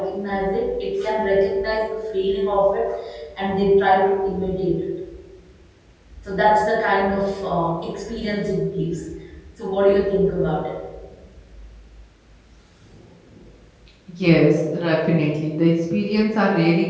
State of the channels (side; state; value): both; identical; correlation 1.00